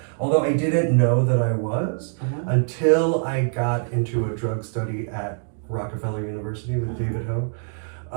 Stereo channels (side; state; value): left; silent; 62 dB below the other